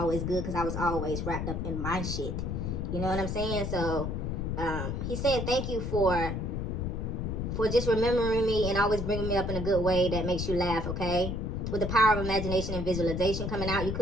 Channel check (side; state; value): left; noise; rumble, 2 dB below the sound